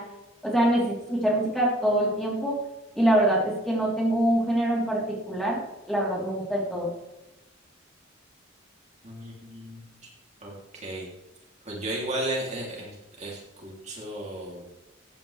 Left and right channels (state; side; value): normal; both; correlation 0.54